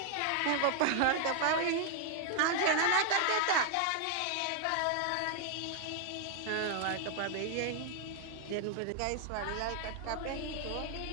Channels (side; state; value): both; different; correlation 0.00